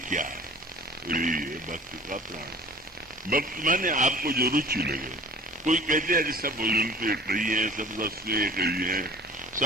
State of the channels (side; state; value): both; normal; correlation 0.45